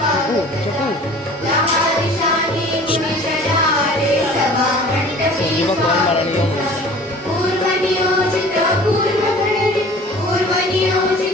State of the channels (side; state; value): both; normal; correlation 0.46